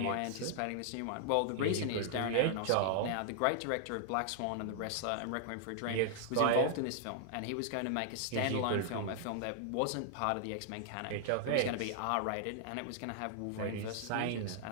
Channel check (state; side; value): different; both; correlation -0.01